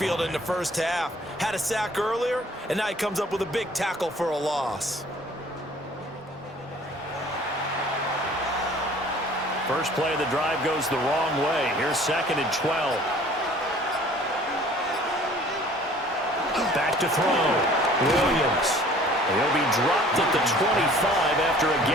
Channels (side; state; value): both; normal; correlation 0.52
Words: in the first half. Had a sack earlier, and now he comes up with a big tackle for a loss. First play of the drive goes the wrong way. Here's 2nd and 12. Back to throw. Williams. He'll be dropped at the 25 after a